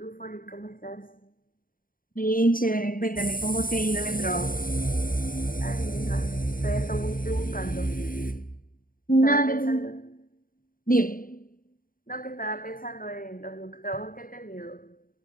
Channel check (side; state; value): right; late; 0.41 ms